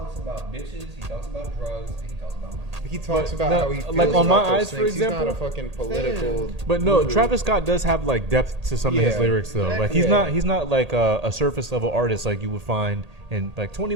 about bitches, he talks about drugs, and he talks about money. He talks But about no, how he feels like, on about My those Eyes, for things. He's not a example? fucking political. but no, guru. Travis Scott does have like depth to some of his Yeah. lyrics though. Like he's Yeah. not like a surface level artist like you would find in like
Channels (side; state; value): left; late; 1.8 ms